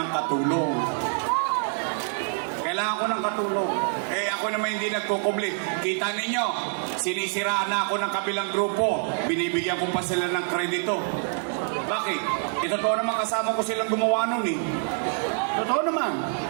katulong. Kailangan ko ng katulong. Eh ako naman hindi nagkukubli. Kita ninyo, sinisiraan na ako ng kabilang grupo. Binibigyan ko pa sila ng kredito. Bakit? Totoo naman kasama ko silang gumawa nun eh. Totoo naman.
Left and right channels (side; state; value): left; silent; 61 dB below the other